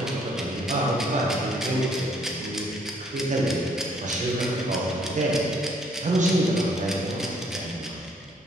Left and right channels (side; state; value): both; normal; correlation 0.65